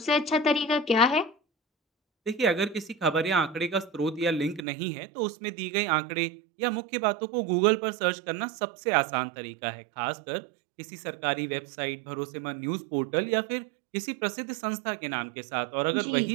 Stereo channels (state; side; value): drops out; left; at 4.7 s